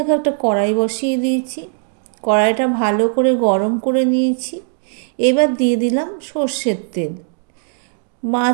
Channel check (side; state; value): left; silent; 62 dB below the other